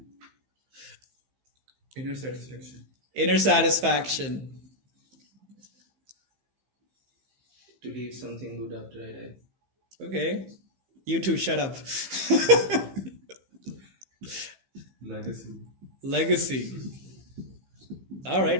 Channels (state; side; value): late; left; 15 ms